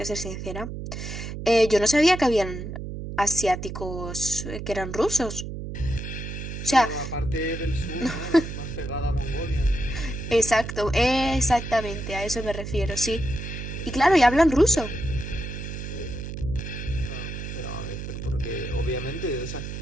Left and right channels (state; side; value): noise; right; hum, 7 dB below the sound